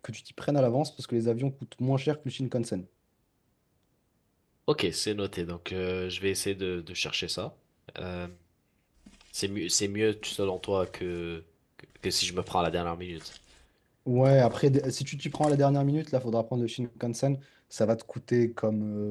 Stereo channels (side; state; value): both; identical; correlation 1.00